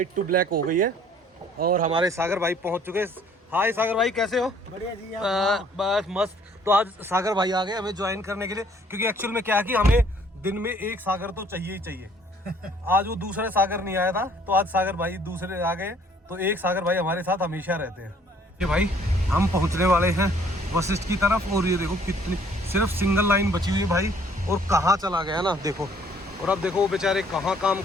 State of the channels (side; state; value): both; normal; correlation 0.59